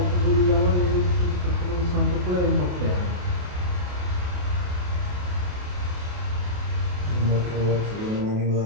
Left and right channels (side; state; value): left; late; 28 ms